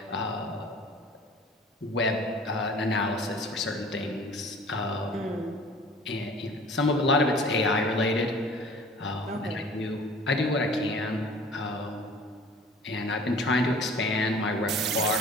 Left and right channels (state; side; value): normal; both; correlation 0.47